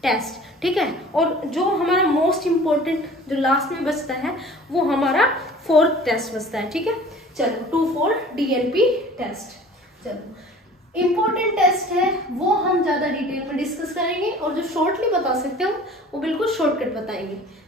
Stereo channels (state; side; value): normal; both; correlation 0.46